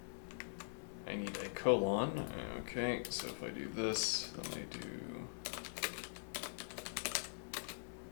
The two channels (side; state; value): right; silent; digital silence